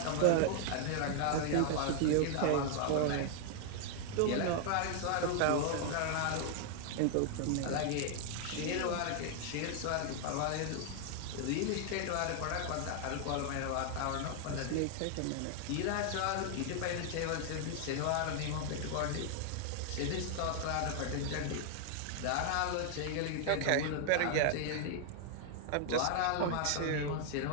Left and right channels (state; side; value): different; both; correlation 0.00